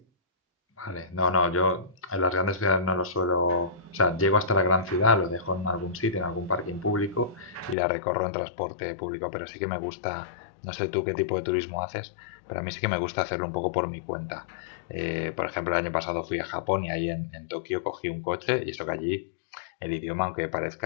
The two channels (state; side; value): drops out; right; at 7.8 s